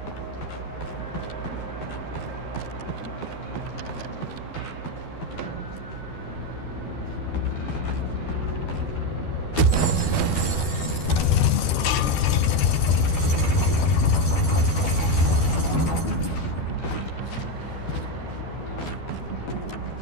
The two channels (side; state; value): right; late; 12 ms